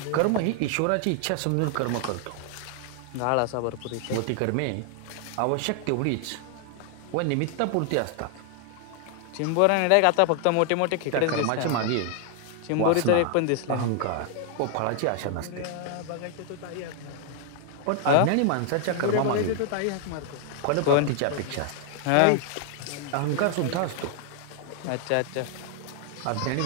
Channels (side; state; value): both; different; correlation 0.00